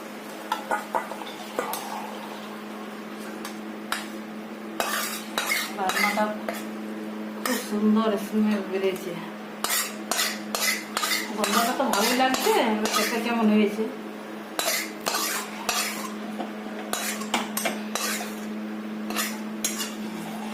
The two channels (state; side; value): identical; both; correlation 1.00